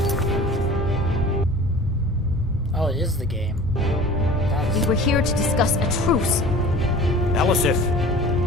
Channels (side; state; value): both; normal; correlation 0.42